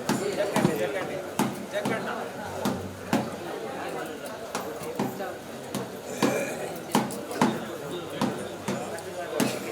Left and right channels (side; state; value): both; identical; correlation 1.00